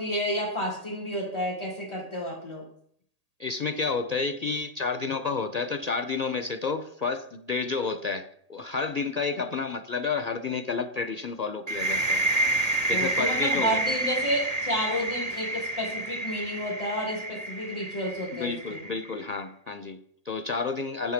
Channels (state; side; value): late; left; 1.8 ms